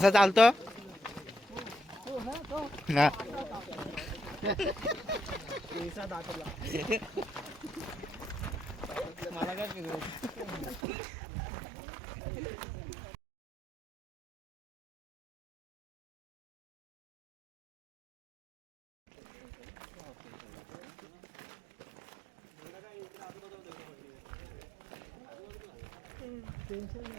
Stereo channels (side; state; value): left; drops out; at 10.8 s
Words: चालतो हो ना तो ना पैसा दाखवला. मला काय फिरवत टेन्शन नाही